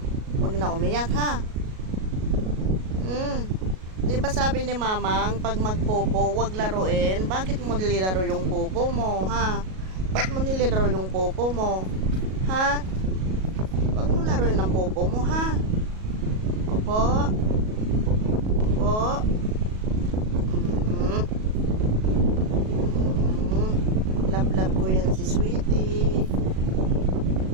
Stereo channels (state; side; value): late; left; 37 ms